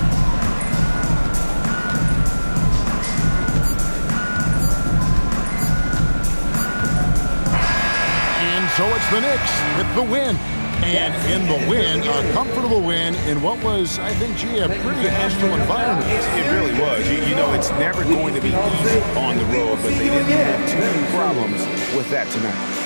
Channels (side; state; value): both; inverted; correlation -1.00